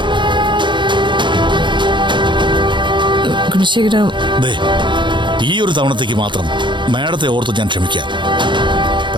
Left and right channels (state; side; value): late; left; 0.23 ms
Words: ഈ ഒരു തവണത്തേക്ക് മാത്രം മാഡത്തെ ഓർത്ത് ഞാൻ ക്ഷമിക്കാം.